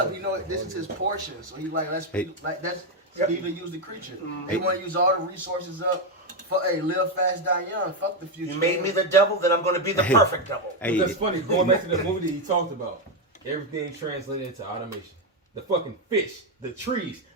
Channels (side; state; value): both; normal; correlation 0.06